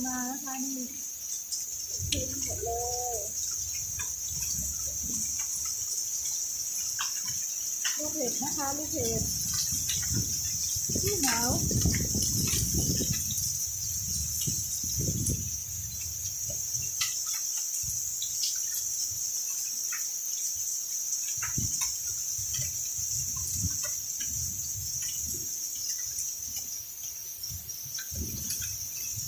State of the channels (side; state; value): both; identical; correlation 1.00